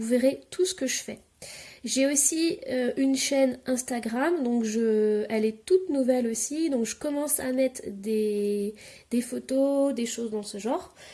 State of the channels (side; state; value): both; identical; correlation 1.00